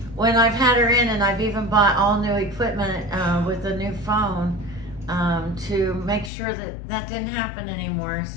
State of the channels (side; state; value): right; drops out; at 6.3 s